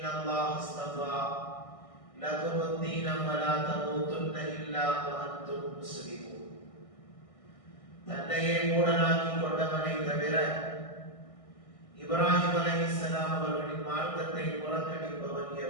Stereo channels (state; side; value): late; right; 1.6 ms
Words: الله اصطفى لكم الدين فلا تموتن إلا وأنتم مسلمون. தன்னையே மூடனாக்கி கொண்டவனை தவிர இப்ராஹிம் அலைஹிஸ்ஸலாம் அவர்களின் மார்க்கத்தை புறக்கணிப்பவன்